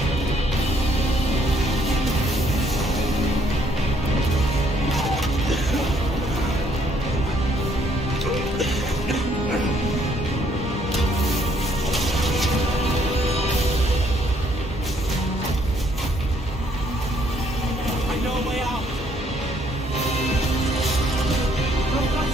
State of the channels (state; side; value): normal; both; correlation 0.68